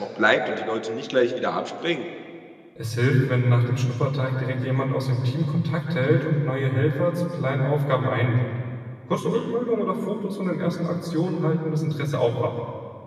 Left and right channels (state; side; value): identical; both; correlation 1.00